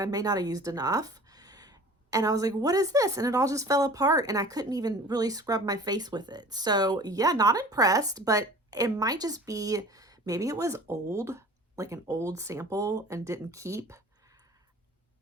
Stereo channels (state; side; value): normal; both; correlation 0.44